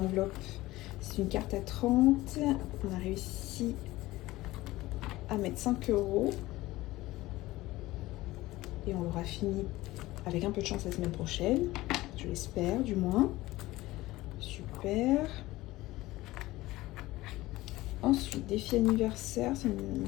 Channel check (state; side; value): quieter; right; 18.2 dB